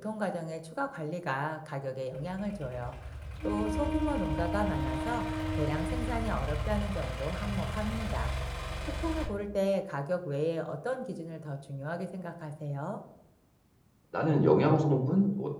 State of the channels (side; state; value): both; identical; correlation 1.00